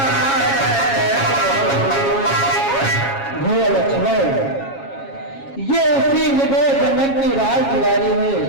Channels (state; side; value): late; right; 7.3 ms